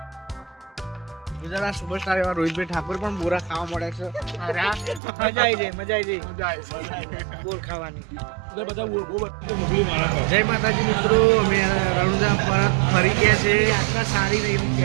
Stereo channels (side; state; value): left; drops out; at 5.0 s